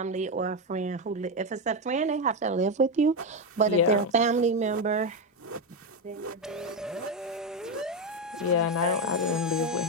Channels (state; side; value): normal; both; correlation 0.09